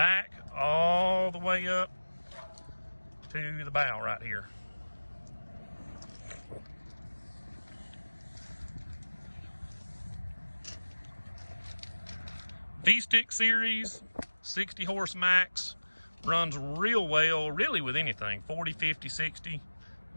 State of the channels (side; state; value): both; inverted; correlation -1.00